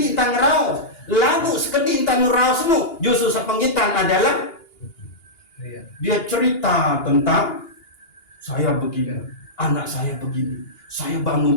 entang ngerah, lagu sekedik entang ngerah, nu, justru sepenggitan adalah dia cerita tentang saya begini, anak saya begini, saya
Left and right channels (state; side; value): late; right; 2.8 ms